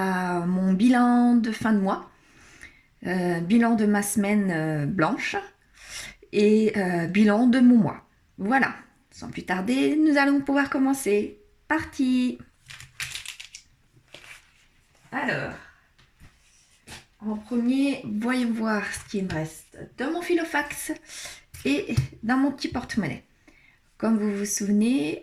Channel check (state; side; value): identical; both; correlation 1.00